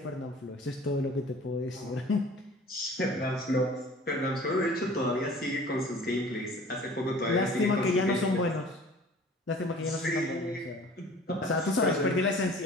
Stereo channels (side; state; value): both; normal; correlation 0.47